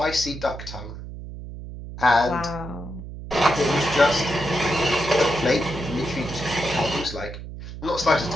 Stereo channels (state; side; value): noise; right; hum, 11 dB below the sound